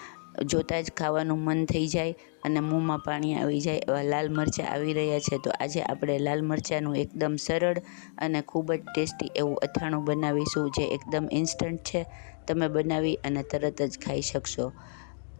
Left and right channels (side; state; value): right; silent; digital silence